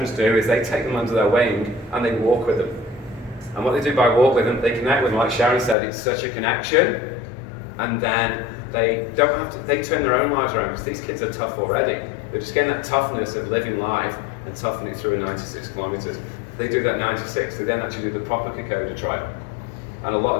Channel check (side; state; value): right; drops out; at 5.8 s